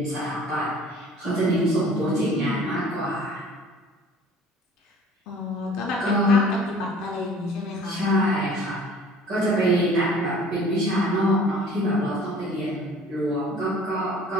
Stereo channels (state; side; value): normal; both; correlation 0.49